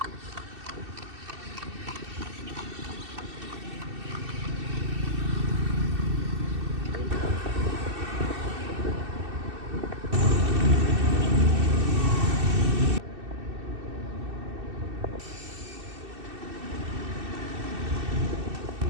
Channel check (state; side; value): late; left; 2.7 ms